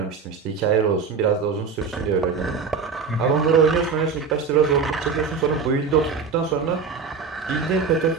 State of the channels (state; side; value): quieter; left; 5.3 dB